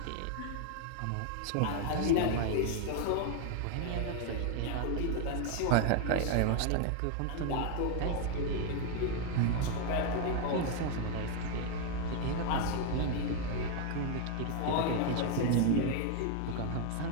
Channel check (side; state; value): both; different; correlation 0.00